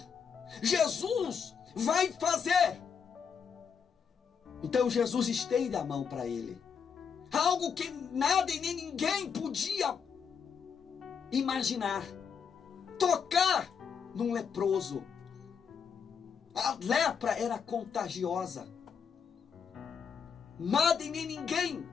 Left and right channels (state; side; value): quieter; right; 6.6 dB